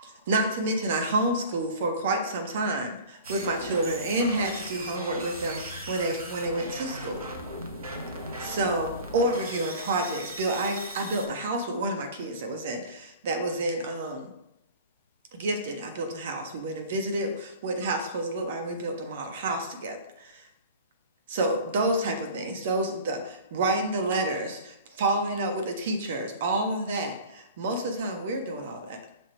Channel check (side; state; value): both; inverted; correlation -0.41